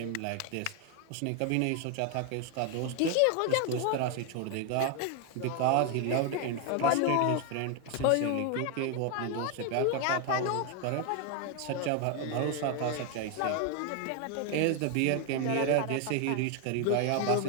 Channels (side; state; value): both; different; correlation 0.01